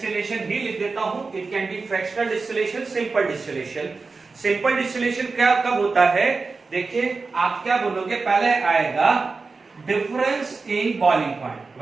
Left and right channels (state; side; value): quieter; left; 4.2 dB